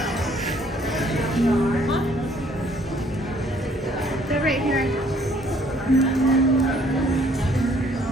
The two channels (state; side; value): normal; both; correlation 0.62